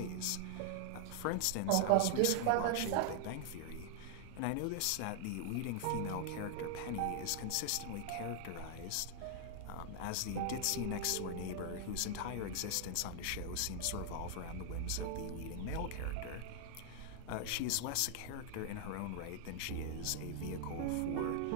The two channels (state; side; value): different; both; correlation 0.00